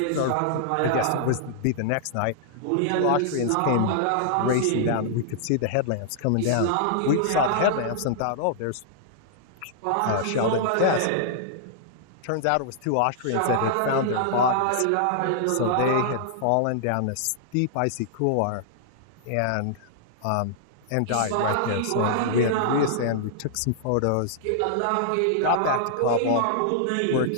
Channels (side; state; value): both; different; correlation -0.01